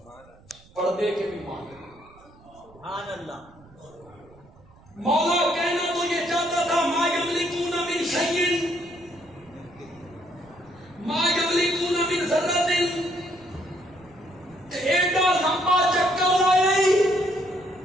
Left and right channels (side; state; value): right; noise; rumble, 26 dB below the sound